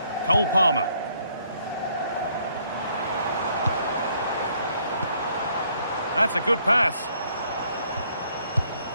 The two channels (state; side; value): inverted; both; correlation -0.67